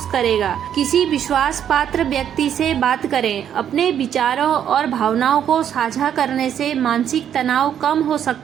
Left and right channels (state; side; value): quieter; left; 9.4 dB